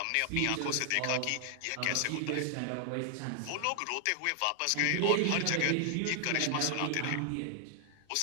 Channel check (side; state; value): both; different; correlation 0.00